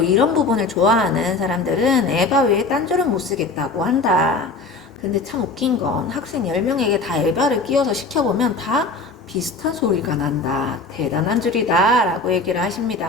이런 부분을 좋아하는 사람들은 에바 외에 딴 줄은 못 쓰겠다고 한다. 근데 참 웃긴 건 학생 10명에게 다 에바를 끼워서 시켜보면 다 비슷한 소리가 난다. 대단한 줄이다 라고 얘기를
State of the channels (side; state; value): right; quieter; 3.7 dB